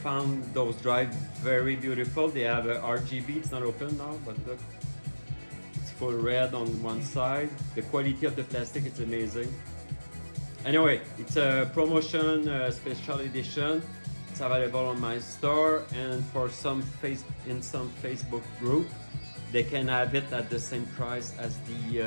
found those drives very beautiful. They have a RGB, it's not open now, but look. Full red on one side. The quality of the plastic is amazing. Anyway, it's a promotion special edition. It's available on my store, and for some Facebook group, they can have it at the same price as the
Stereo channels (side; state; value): both; inverted; correlation -1.00